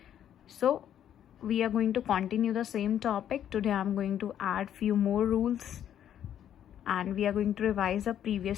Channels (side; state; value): right; quieter; 10.2 dB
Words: So, we are going to continue the same topic. Today I am going to add few more rules. And we are going to revise the